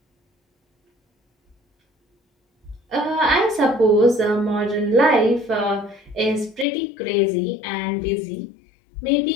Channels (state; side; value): drops out; right; at 6.7 s